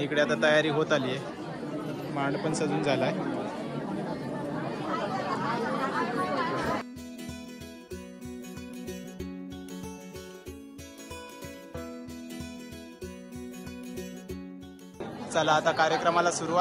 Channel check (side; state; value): both; identical; correlation 1.00